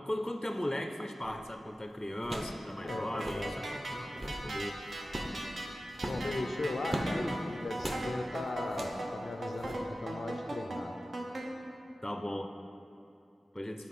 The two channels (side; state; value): both; normal; correlation 0.95